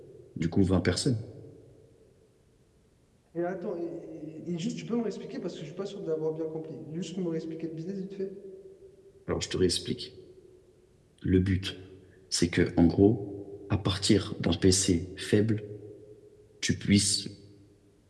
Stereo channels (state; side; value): identical; both; correlation 1.00